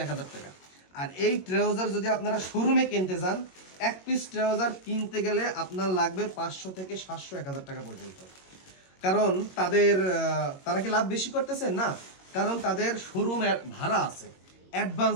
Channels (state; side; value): late; right; 22 ms